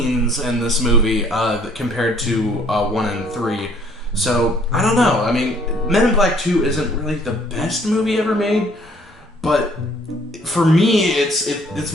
in this movie compared to 1 and 3. So, I don't know. I mean, Men in Black 2 isn't really the best movie ever made, but for me, it's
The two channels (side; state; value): both; normal; correlation 0.60